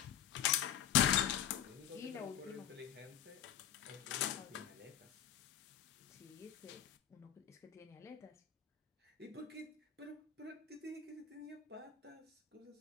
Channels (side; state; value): right; quieter; 10.0 dB